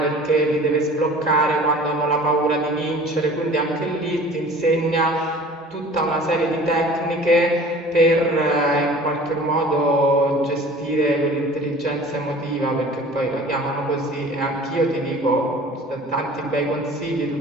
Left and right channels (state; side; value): normal; both; correlation 0.45